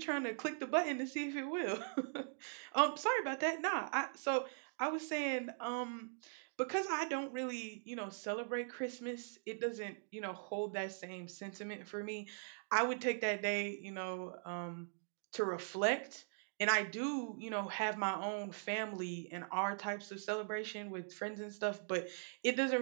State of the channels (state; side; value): silent; left; digital silence